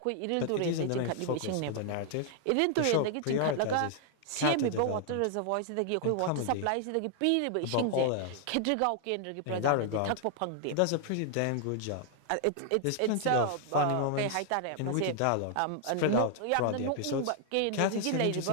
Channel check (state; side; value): different; both; correlation 0.00